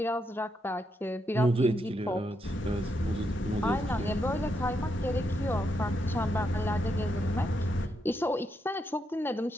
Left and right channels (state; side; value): normal; both; correlation 0.80